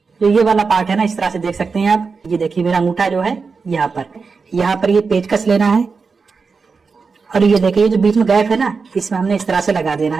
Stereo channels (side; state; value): left; quieter; 4.9 dB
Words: तो ये वाला पार्ट है ना, इस तरह से देख सकते हैं आप। ये देखिए मेरा अंगूठा जो है यहाँ पर ये पेचकस लेना है, और ये देखिए जो बीच में गैप है ना, इसमें हमने इस तरह से लगा देना